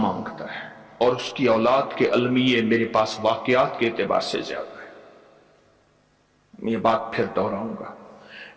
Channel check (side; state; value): both; identical; correlation 1.00